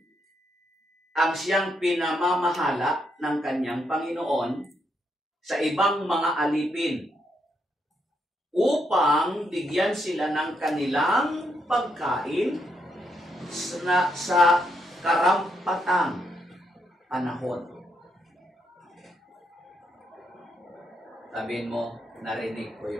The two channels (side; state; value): both; normal; correlation 0.78